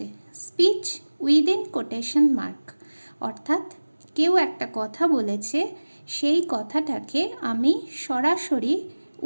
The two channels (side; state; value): both; inverted; correlation -1.00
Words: স্পিচ উইদিন কোটেশন মার্ক, অর্থাৎ কেউ একটা কথা বলেছে, সেই কথাটাকে আমি সরাসরি